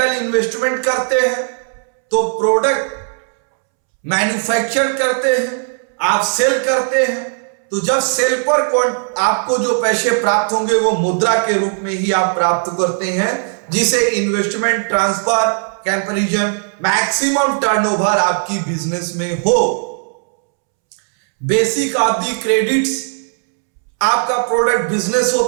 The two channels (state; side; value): silent; left; 68 dB below the other